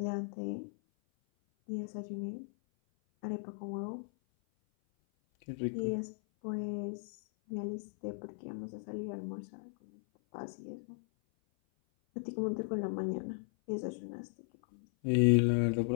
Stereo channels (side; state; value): right; silent; 53 dB below the other